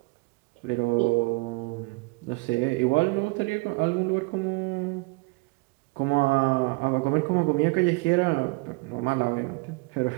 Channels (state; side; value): quieter; left; 27.4 dB